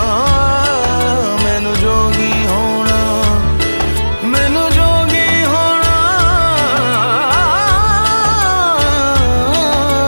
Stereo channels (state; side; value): inverted; both; correlation -1.00